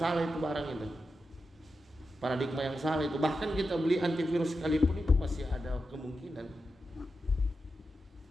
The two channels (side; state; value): both; normal; correlation 0.89